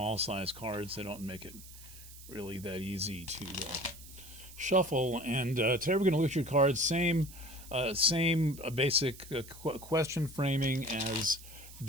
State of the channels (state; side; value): noise; right; hiss, 17 dB below the sound